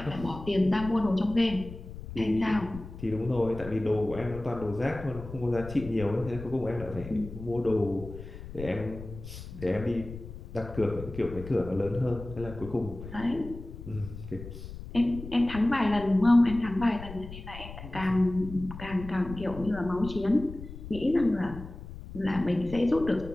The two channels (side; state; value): left; noise; rumble, 12 dB below the sound